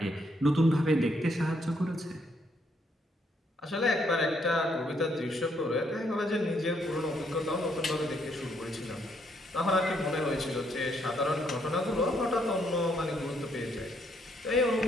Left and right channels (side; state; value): both; normal; correlation 0.72